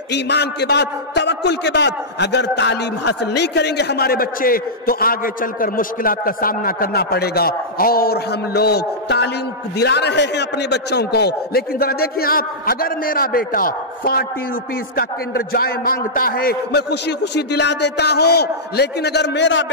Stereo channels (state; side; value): normal; both; correlation -0.12